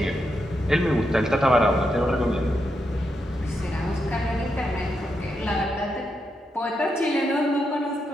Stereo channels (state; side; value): normal; both; correlation 0.83